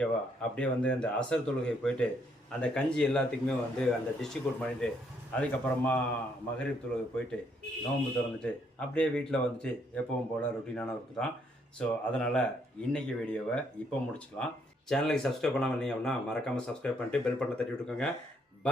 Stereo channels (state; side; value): normal; both; correlation 0.70